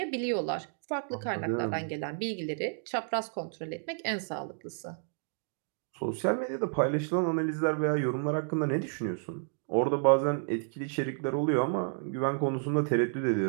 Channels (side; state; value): left; silent; 57 dB below the other